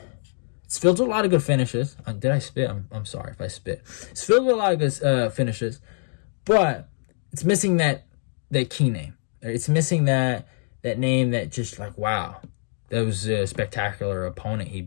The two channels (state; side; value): silent; right; digital silence